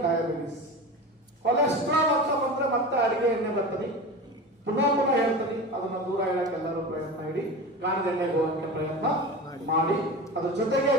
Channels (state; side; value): normal; both; correlation 0.29